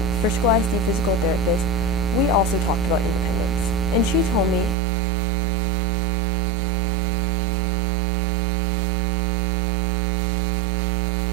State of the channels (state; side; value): drops out; left; at 4.8 s